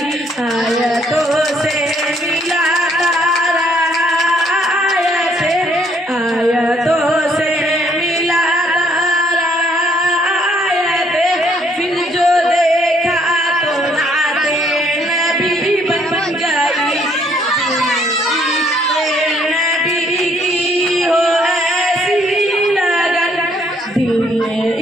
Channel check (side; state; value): both; normal; correlation 0.67